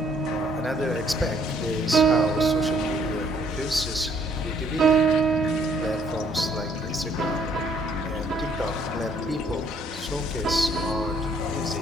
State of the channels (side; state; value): both; normal; correlation 0.65